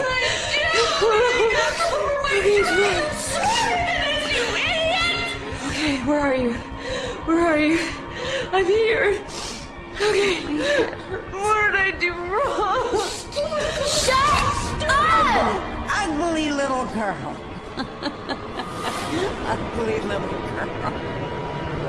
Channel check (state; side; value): identical; both; correlation 1.00